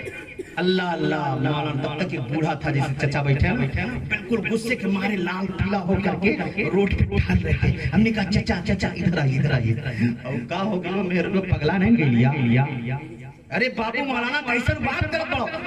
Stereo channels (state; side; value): identical; both; correlation 1.00